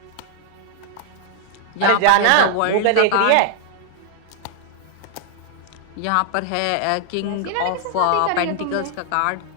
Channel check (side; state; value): both; different; correlation 0.00